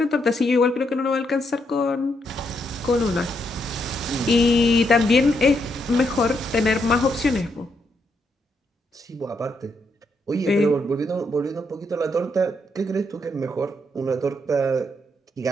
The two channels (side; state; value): both; normal; correlation 0.78